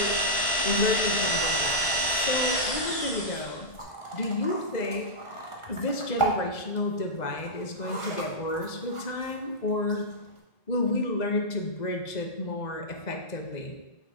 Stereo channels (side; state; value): right; late; 1.7 ms